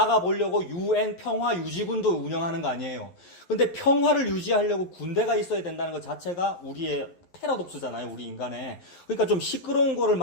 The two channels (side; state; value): right; late; 11 ms